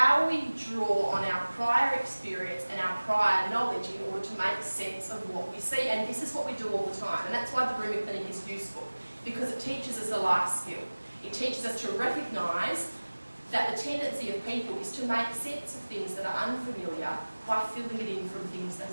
we draw on our prior experience and our prior knowledge in order to make sense of what we see. And this is what we do all the time. And that's why the grooming clinic is useful, because it teaches us a life skill. It teaches us to recognise that the tendency of people is to make sense of things that are unfamiliar by filling it in from things that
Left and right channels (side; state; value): both; inverted; correlation -1.00